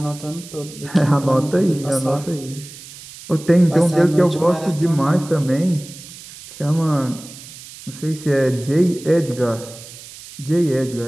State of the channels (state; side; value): noise; right; hiss, 17 dB below the sound